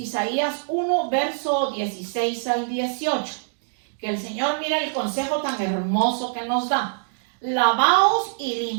1, verso 16 al 18. Que el Señor, mira el consejo tan hermoso que nos da. Lavaos y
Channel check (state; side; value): silent; left; digital silence